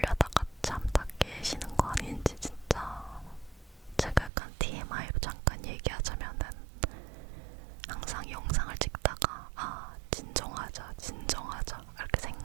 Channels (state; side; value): drops out; left; at 4.3 s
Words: 잠 다 깨시는 거 아닌지 진짜. 제가 약간 TMI로 잠깐 얘기하자면은 항상 영상을 찍다가 진정하자 이렇게